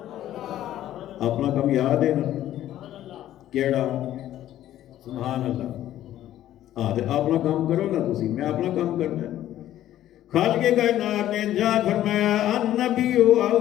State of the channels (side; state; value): right; quieter; 12.8 dB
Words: اپنا کم یاد ہے نا کیڑا؟ سبحان اللہ۔ اپنا کام کرو نا تسی، میں اپنا کام کرنا ہے۔ خالق کائنات نے ارشاد فرمایا النبی